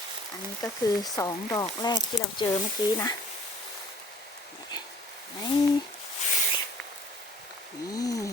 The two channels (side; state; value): both; normal; correlation 0.54